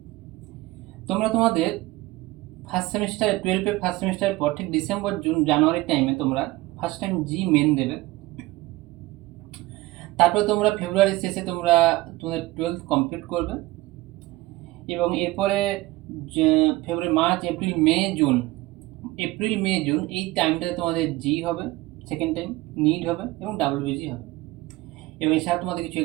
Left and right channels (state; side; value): quieter; left; 19.3 dB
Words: তোমরা তোমাদের ফার্স্ট সেমিস্টার 12-এর ফার্স্ট সেমিস্টারের পর ঠিক ডিসেম্বর জানুয়ারির টাইমে তোমরা ফার্স্ট টাইম জি মেন দেবে। তারপরে তোমরা ফেব্রুয়ারির শেষে তোমরা তোমাদের 12th কমপ্লিট করবে এবং এরপরে ফেব্রুয়ারি, মার্চ, এপ্রিল মে জুন এই টাইমটাতে তোমাদের জি হবে, সেকেন্ড টাইম নিট হবে এবং ডাব্লিউবিজি হবে। এবং এছাড়া তোমাদের কিছু